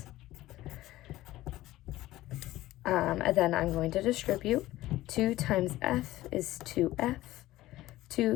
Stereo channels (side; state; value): right; quieter; 16.2 dB